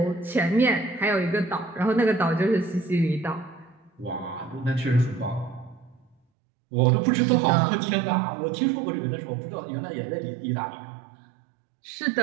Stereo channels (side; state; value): left; drops out; at 6.2 s